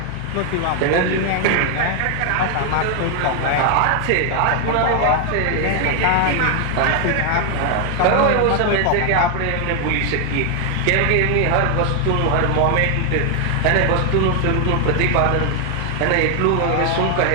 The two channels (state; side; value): different; both; correlation 0.00